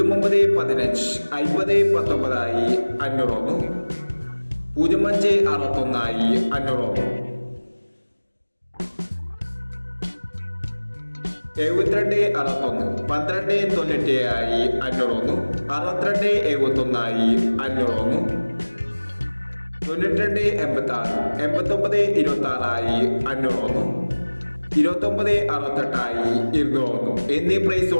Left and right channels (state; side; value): inverted; both; correlation -1.00